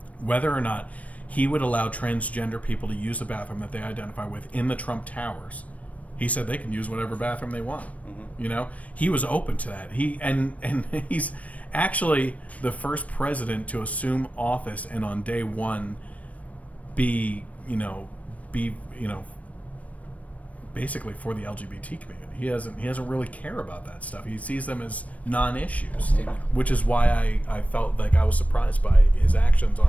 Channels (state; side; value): late; right; 0.067 ms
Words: whether or not he would allow transgender people to use the bathroom that they identify with in the Trump Towers. He said they can use whatever bathroom they want. He was open to that. He's actually the first president to assume office and on day one be basically for the LGBT community. He doesn't really care about that stuff. He sees them as non-issues, which is why I felt like I was surprised by his actions